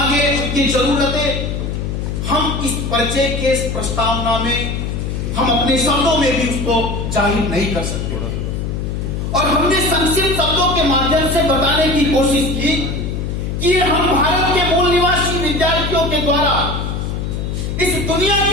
उनकी जरूरतें, हम इस परिचय के इस प्रस्तावना में हम अपने शब्दों में भी उसको जाहिर नहीं कर सकते। और हमने संक्षिप्त शब्दों के माध्यम से बताने की कोशिश की कि हम भारत के मूल निवासी विद्यार्थियों के द्वारा इस दुनिया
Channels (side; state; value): left; noise; hum, 3 dB below the sound